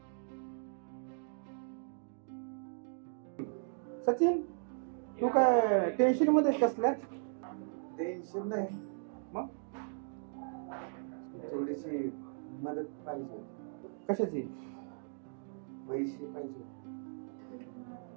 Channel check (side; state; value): left; silent; digital silence